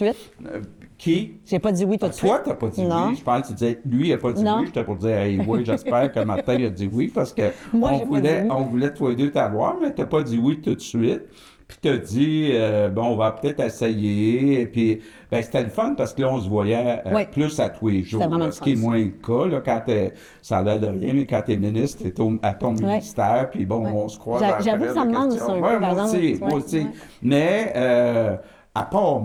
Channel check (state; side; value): identical; both; correlation 1.00